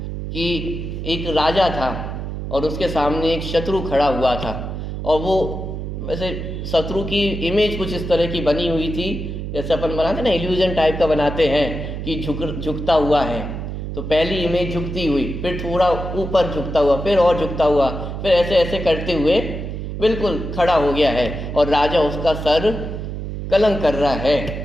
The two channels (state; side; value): noise; right; hum, 6 dB below the sound